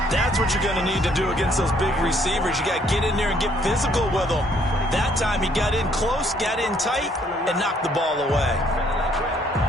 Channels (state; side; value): normal; both; correlation 0.65